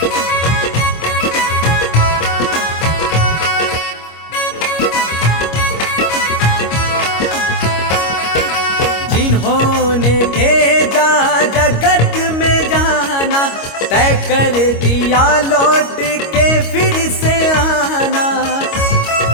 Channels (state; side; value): late; right; 25 ms